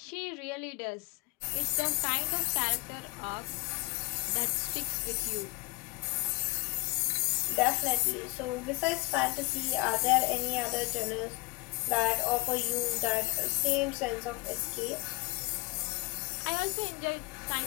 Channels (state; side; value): quieter; right; 25.8 dB